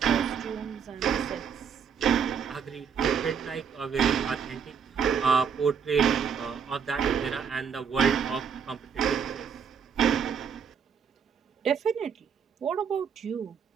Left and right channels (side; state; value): left; quieter; 6.9 dB